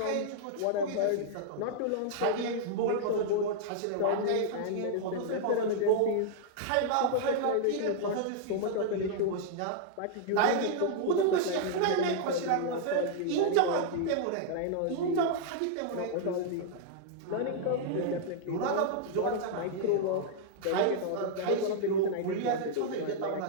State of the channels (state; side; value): different; both; correlation -0.01